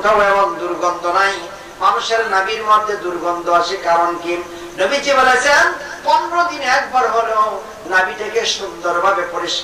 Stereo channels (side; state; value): both; identical; correlation 1.00